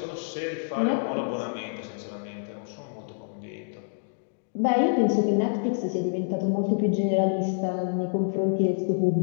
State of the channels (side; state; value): right; silent; digital silence